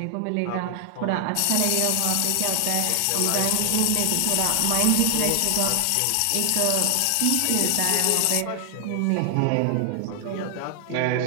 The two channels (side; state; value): both; different; correlation 0.00